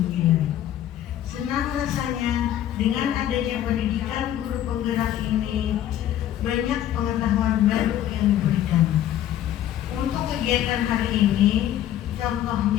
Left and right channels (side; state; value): right; quieter; 11.7 dB